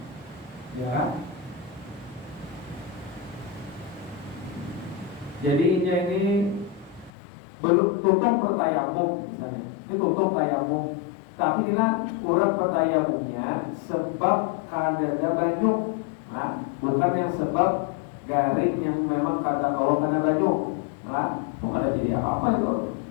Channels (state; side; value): drops out; right; at 7.1 s